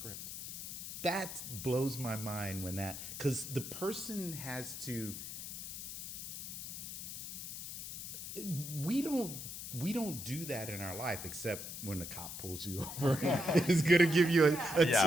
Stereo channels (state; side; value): noise; left; hiss, 8 dB below the sound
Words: That blows my mind when that, because the person has to, we don't do that in our life except when the cop pulls you over. It's gonna give you a